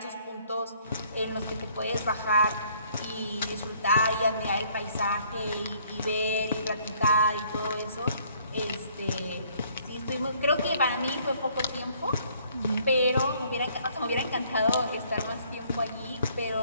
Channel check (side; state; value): both; inverted; correlation -0.62